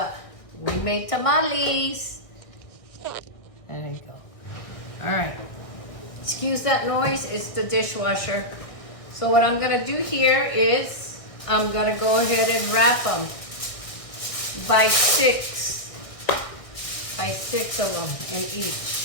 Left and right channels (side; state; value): right; late; 1.6 ms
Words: We made tamales. There you go. All right. Excuse that noise. It's the dishwasher. So what I'm going to do here is I'm going to go ahead and wrap them by 6 of them in each.